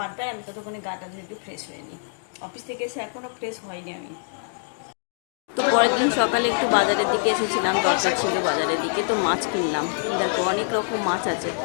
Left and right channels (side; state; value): right; silent; digital silence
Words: আমি ততক্ষণে গাটা ধুয়ে একটু ফ্রেশ হয়ে নিই। অফিস থেকে এসে এখনও ফ্রেশ হয়নি আমি। তো পরের দিন সকালে একটু বাজারের দিকে এসেছিলাম, দরকার ছিল বাজারের দিকে, তো মাছ কিনলাম। দেখো অনেক রকম মাছ আছে,